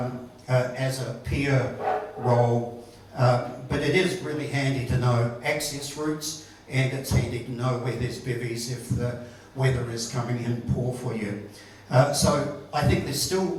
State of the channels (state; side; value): identical; both; correlation 1.00